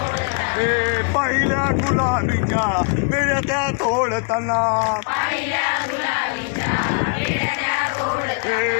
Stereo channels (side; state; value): right; quieter; 37.7 dB